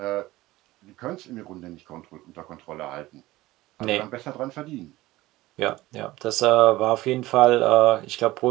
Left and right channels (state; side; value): quieter; left; 18.0 dB